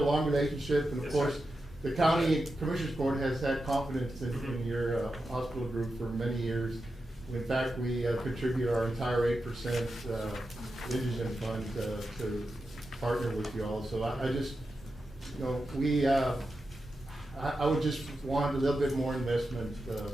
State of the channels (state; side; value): normal; both; correlation 0.90